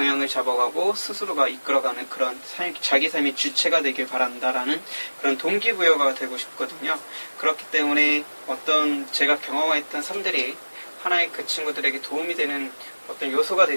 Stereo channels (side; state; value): both; inverted; correlation -1.00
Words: 잡아가고 스스로가 이끌어가는 그런 자기 삶의 주체가 되길 바란다라는 그런 동기부여가 되고 싶거든요. 그렇기 때문에 제가 경험했던 삶들이 하나의 그 친구들에게 도움이 되는 어떤 요소가